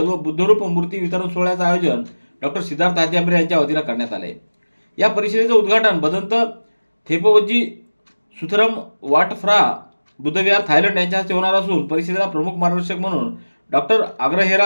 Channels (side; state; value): both; inverted; correlation -1.00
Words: व बुद्धरूप मूर्ती वितरण सोहळ्याचं आयोजन डॉक्टर सिद्धार्थ हात्यांबरे यांच्या वतीनं करण्यात आले. या परिषदेचं उद्घाटन भदंत थेपवजी सुथरम वाटफ्रा बुद्धविहार थायलंड यांच्या हस्ते होणार असून परिषदेला प्रमुख मार्गदर्शक म्हणून डॉक्टर